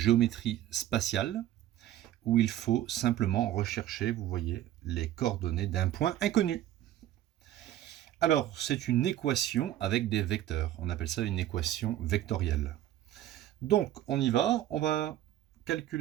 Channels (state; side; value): quieter; left; 12.9 dB